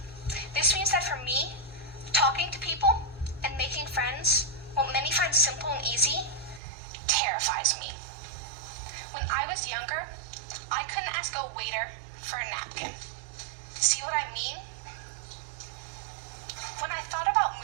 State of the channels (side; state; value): left; drops out; at 6.6 s